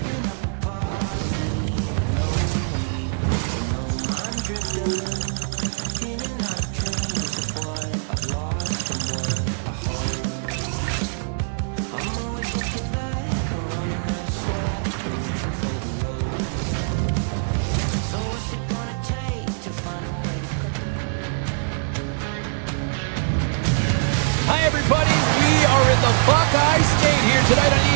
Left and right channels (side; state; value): left; silent; digital silence